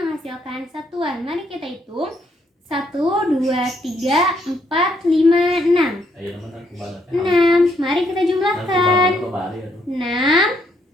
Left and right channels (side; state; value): both; normal; correlation 0.73